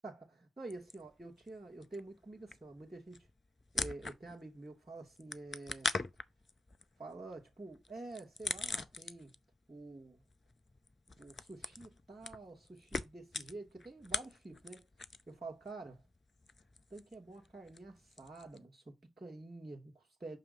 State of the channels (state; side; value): normal; both; correlation 0.82